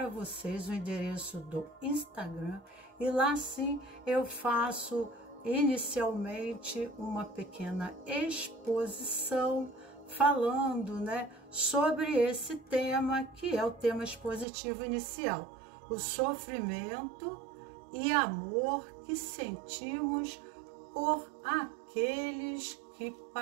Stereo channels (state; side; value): drops out; left; at 14.5 s